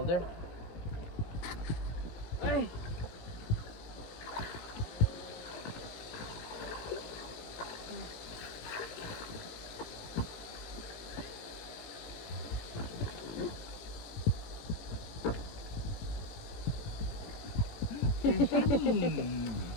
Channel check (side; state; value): right; late; 17 ms